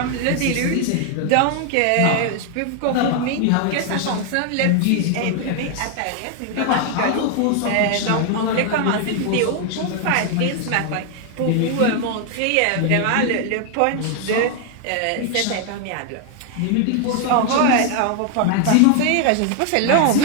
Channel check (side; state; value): both; different; correlation 0.00